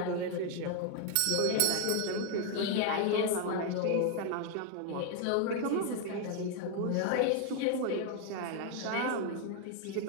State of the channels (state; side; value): different; both; correlation 0.00